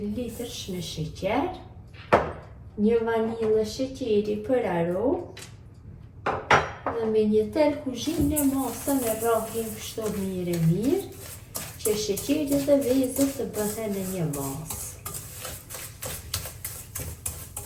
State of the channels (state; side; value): identical; both; correlation 1.00